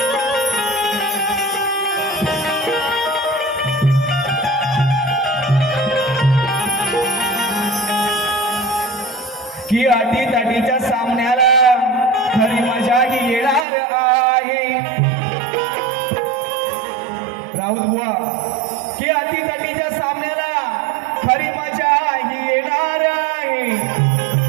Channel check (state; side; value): drops out; left; at 13.7 s